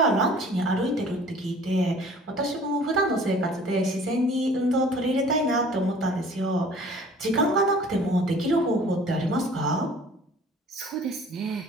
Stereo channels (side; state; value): both; normal; correlation 0.49